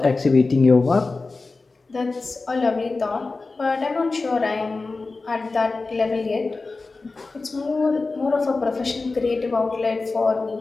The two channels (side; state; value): right; quieter; 3.7 dB